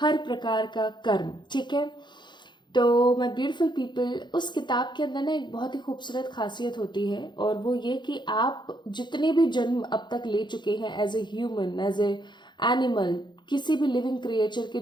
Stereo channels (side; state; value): right; late; 0.22 ms